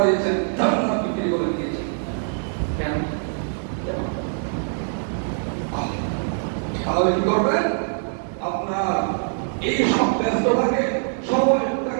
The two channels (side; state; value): left; silent; digital silence